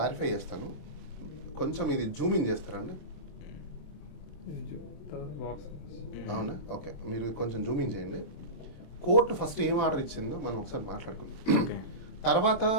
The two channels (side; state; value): right; late; 27 ms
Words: చేస్తాను, కొంచెం ఇది జూమ్ ఇన్ చేస్తారా అండి? అవునా, ఓకే. మీరు కొంచెం జూమ్ ఇన్ చేయండి. కోర్టు ఫస్ట్ ఏం ఆర్డర్ ఇచ్చిందో మనం ఒకసారి మాట్లాడుకుందాం. తర్వాత